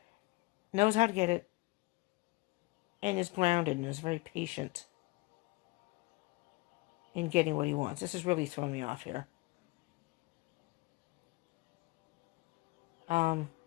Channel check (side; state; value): right; quieter; 23.4 dB